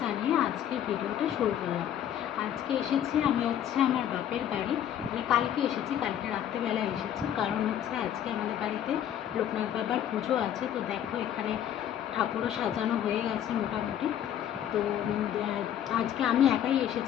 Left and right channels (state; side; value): quieter; right; 10.3 dB